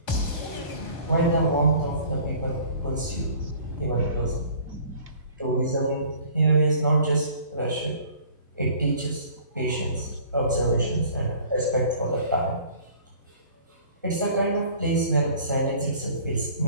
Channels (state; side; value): inverted; both; correlation -0.50